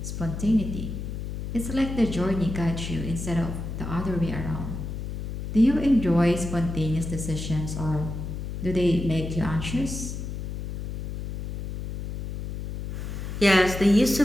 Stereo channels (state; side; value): noise; left; hum, 6 dB below the sound